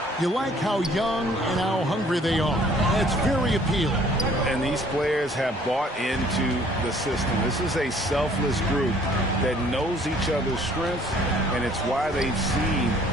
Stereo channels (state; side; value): normal; both; correlation 0.58